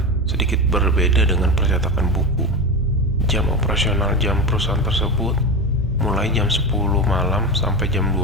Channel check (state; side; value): normal; both; correlation 0.20